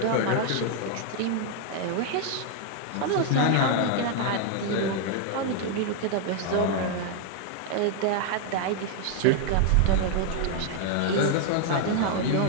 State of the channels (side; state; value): both; different; correlation 0.00